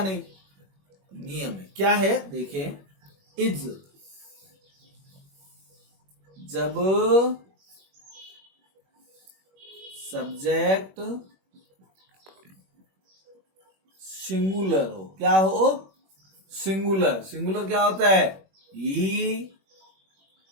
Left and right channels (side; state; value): left; late; 21 ms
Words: नहीं। नियम है, क्या है देखें। इज जब सब्जेक्ट सिंगुलर हो। क्या हो? सिंगुलर। सिंगुलर क्या होता है?